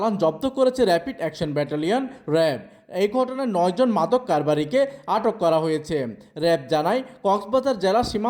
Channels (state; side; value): identical; both; correlation 1.00